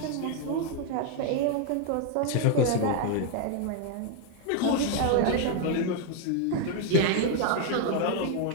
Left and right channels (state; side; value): different; both; correlation 0.01